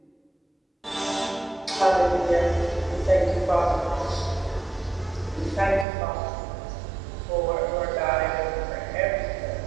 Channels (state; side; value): drops out; left; at 5.9 s